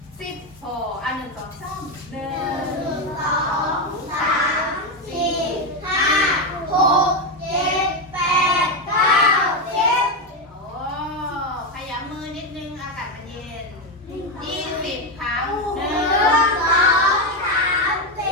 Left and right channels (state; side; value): normal; both; correlation 0.09